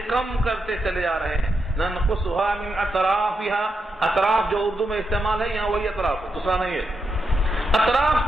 کم کرتے چلے جا رہے ہیں۔ ننقصها من اطرافها، اطراف جو اردو میں استعمال ہے یہاں وہی اطراف ہے، دوسرا نہیں ہے۔ اطراف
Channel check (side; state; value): both; normal; correlation 0.84